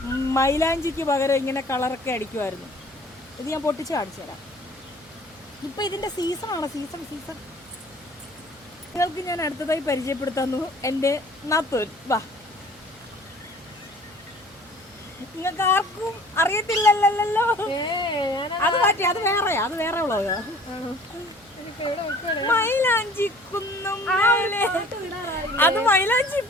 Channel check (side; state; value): right; noise; hum, 26 dB below the sound